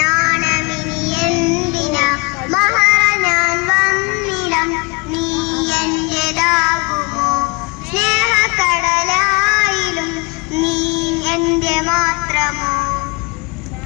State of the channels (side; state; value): right; quieter; 29.5 dB